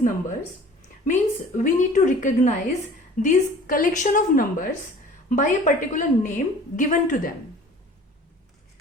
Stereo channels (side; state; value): both; normal; correlation 0.46